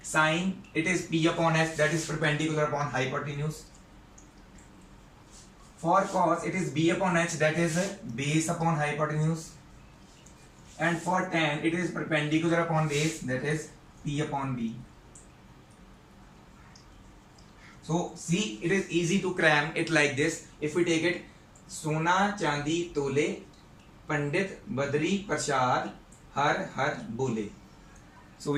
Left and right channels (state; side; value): identical; both; correlation 1.00